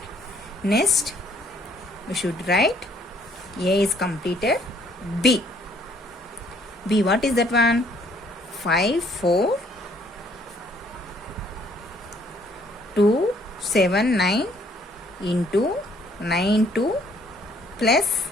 Next, we should write A is completed. B. B, what is that one? 5, 4, 2, 7, 9 into 9, 2 plus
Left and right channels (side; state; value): both; normal; correlation 0.63